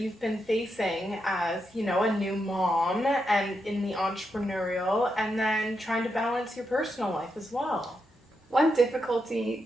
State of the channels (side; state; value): both; normal; correlation 0.84